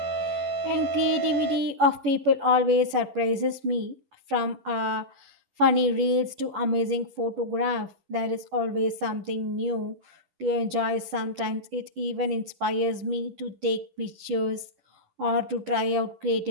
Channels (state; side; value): late; left; 11 ms